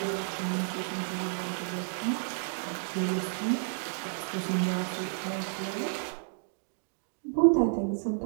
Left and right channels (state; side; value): silent; left; digital silence